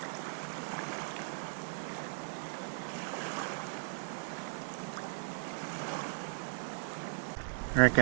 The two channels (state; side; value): silent; left; digital silence